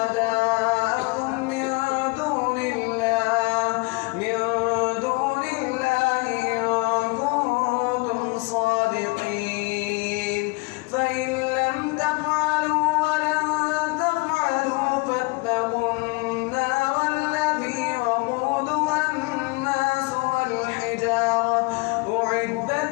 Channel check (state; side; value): quieter; right; 27.7 dB